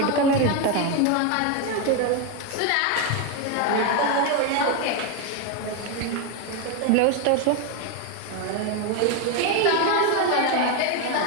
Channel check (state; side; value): different; both; correlation 0.02